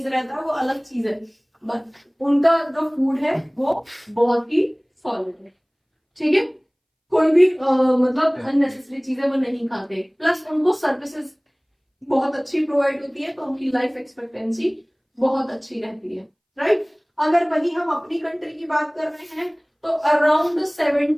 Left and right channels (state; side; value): identical; both; correlation 1.00